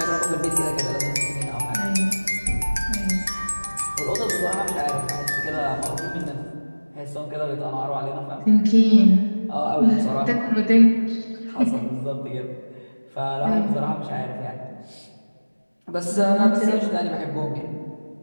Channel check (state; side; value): inverted; both; correlation -1.00